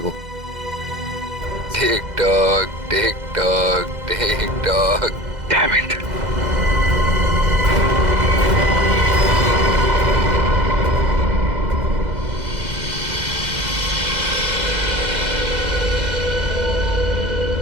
Tick tock tick tock tick tock. Damn it.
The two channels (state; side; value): late; left; 2.0 ms